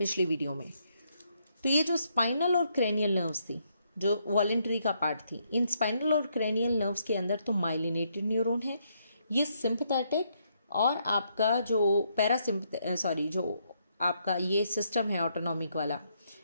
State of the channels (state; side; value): inverted; both; correlation -0.75